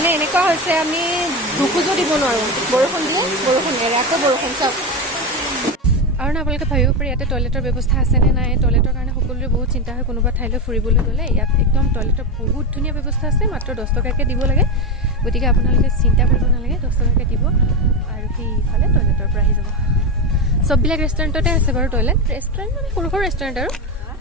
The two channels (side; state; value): both; normal; correlation 0.16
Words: এনেকুৱা হৈছে, আমি দুখোজো দিব নোৱাৰোঁ, বৰষুণ দিয়ে, বৰষুণ এৰে, আকৌ বৰষুণ। চাওক, আৰু না আপোনালোকে ভাবিব পাৰে ইয়াতে টয়লেটৰ ব্যৱস্থা আছেনে নাই। টয়লেটৰ কাৰণে সকলোৰে বহুত চিন্তা হয়, কোনোবা ঠাইলৈ ফুৰিবলৈ গ'লে। ইয়াত একদম টয়লেটৰ বহুত ধুনীয়া ব্যৱস্থা আছে, মাত্ৰ 10 টকাকৈ দিব লাগে। গতিকে আপোনালোকে চিন্তা কৰিব নালাগে, 10 টকাকৈ দিব আৰু সেইফালে টয়লেটৰ পৰা আহি যাব। চববিলাক ৰেষ্টুৰেণ্টতে আছে বাৰু টয়লেট, ৰেষ্টুৰেণ্ট মানে সৰু সৰু ৰেষ্টুৰেণ্ট আৰু